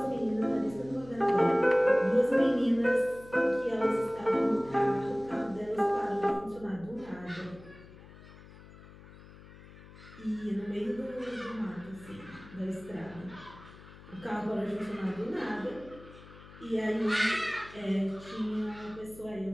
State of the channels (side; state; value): left; noise; hum, 19 dB below the sound